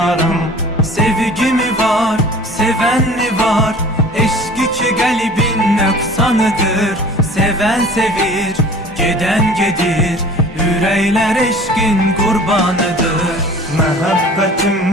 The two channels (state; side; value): normal; both; correlation 0.45